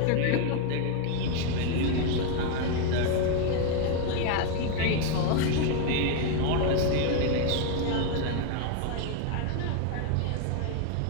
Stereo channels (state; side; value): different; both; correlation 0.01